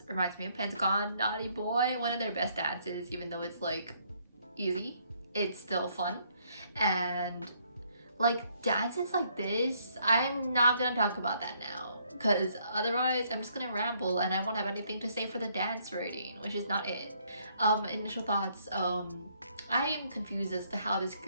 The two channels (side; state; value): both; inverted; correlation -0.69